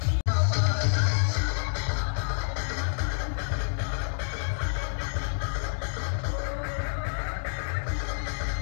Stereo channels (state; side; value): silent; right; digital silence